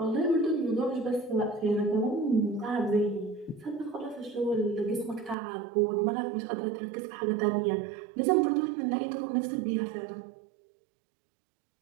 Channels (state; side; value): drops out; left; at 5.4 s